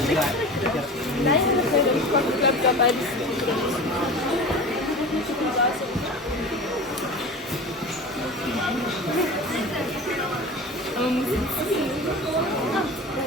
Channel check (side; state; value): both; normal; correlation 0.34